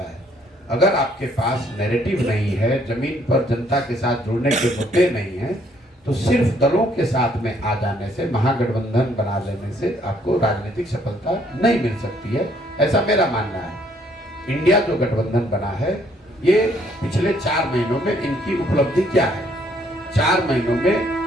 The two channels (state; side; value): normal; both; correlation 0.66